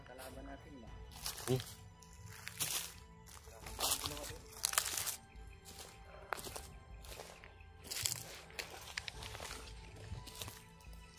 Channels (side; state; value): both; identical; correlation 1.00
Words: kalaban natin ba. Sige.